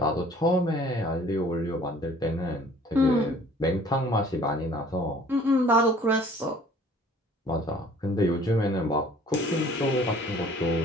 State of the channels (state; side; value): normal; both; correlation 0.53